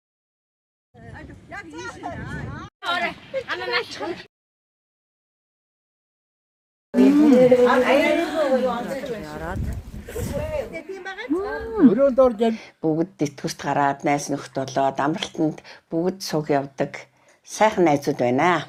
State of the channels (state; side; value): identical; both; correlation 1.00